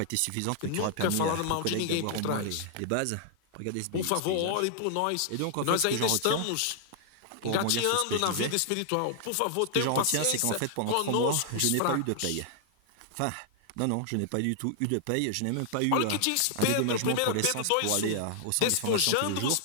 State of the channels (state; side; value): different; both; correlation 0.00